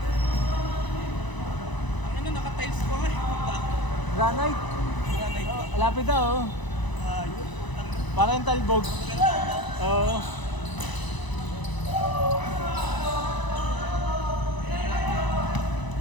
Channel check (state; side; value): late; right; 1.0 ms